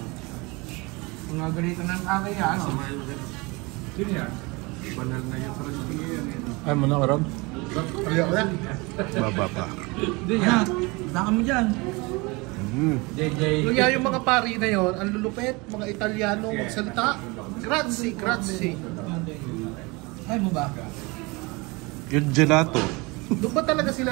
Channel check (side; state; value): left; quieter; 25.8 dB